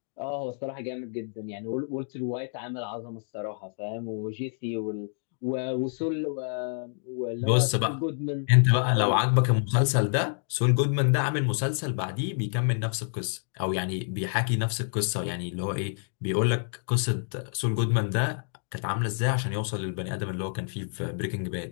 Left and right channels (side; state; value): right; silent; 59 dB below the other